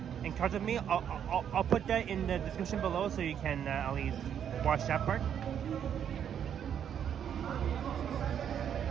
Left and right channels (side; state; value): left; quieter; 8.9 dB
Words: encountered me. I'll put that in the description below so you can at least watch that part.